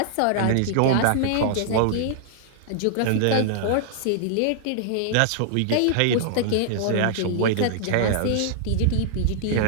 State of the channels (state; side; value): different; both; correlation -0.01